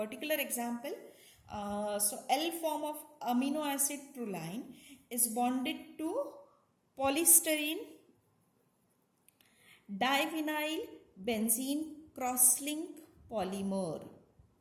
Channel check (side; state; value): both; identical; correlation 1.00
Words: example. So L form of amino acid proline is bonded to polystyrene divinyl benzene crosslink polymer,